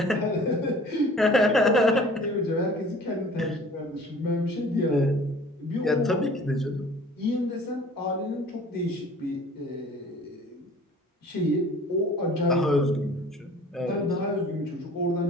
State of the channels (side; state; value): both; normal; correlation 0.48